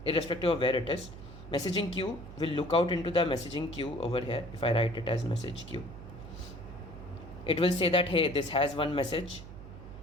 irrespective of where it is, messaging queue will look out into the messaging queue over here. If I write it as message queue, it will say that, hey, this has one message,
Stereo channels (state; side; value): noise; right; hum, 14 dB below the sound